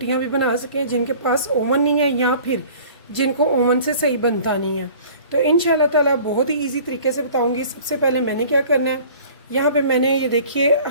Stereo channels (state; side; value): inverted; both; correlation -0.47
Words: भी बना सकें जिनके पास ओवन नहीं है या फिर जिनको ओवन से सही बनता नहीं है। तो इंशाल्लाह ताला बहुत ही ईजी तरीके से बताऊँगी। सबसे पहले मैंने क्या करना है, यहाँ पे मैंने ये देखिए